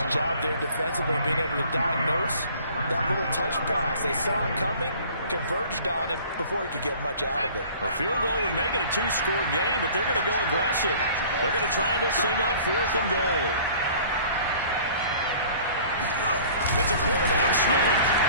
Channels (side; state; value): both; inverted; correlation -0.49